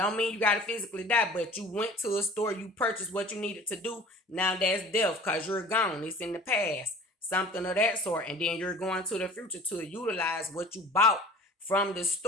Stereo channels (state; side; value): normal; both; correlation 0.44